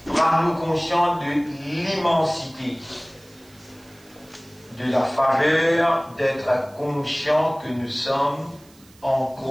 rend-nous conscients de l'immensité, de la faveur d'être conscients que nous sommes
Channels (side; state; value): right; noise; hiss, 27 dB below the sound